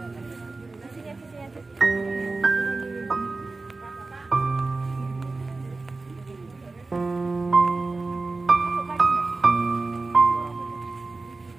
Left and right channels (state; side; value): quieter; left; 3.6 dB